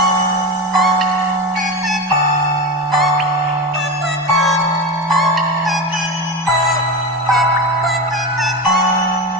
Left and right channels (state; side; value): normal; both; correlation 0.21